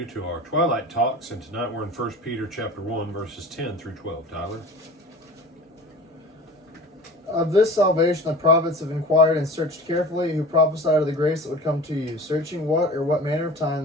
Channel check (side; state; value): both; normal; correlation 0.38